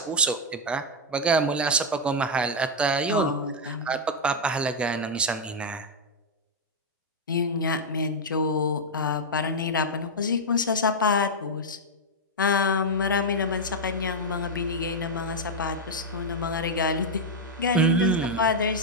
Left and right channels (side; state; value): both; normal; correlation -0.01